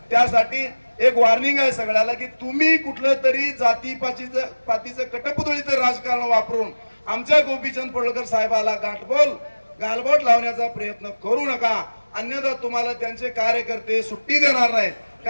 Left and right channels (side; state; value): both; inverted; correlation -1.00